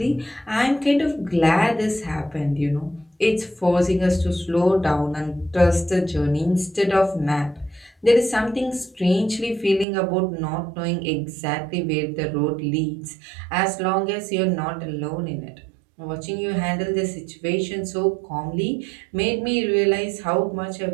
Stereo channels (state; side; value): drops out; left; at 9.9 s